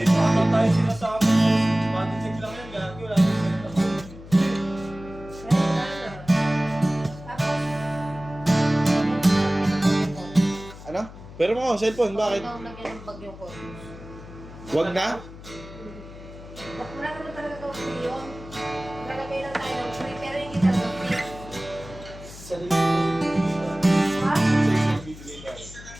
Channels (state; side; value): noise; left; hum, 16 dB below the sound